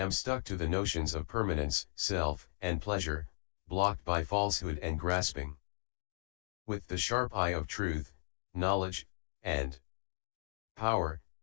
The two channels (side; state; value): right; silent; digital silence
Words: stuck to the notions of permanence, self, and pleasure, blocked by falsehood and grasping. With the sharp eye of truth, knowledge, and power,